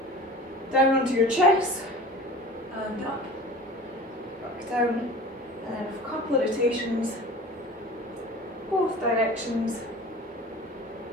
Down onto your chest, and up, back down, and then a couple of rotations, both directions,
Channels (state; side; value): normal; both; correlation 0.39